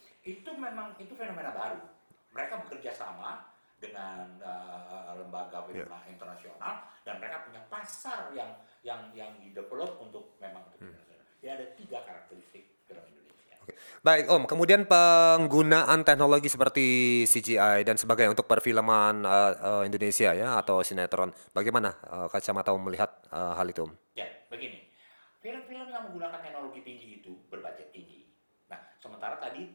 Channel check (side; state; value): both; inverted; correlation -1.00